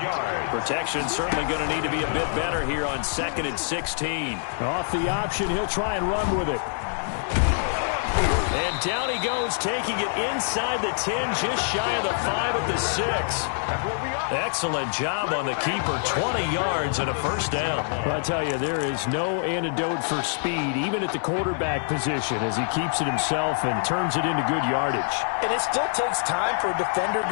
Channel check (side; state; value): right; silent; 57 dB below the other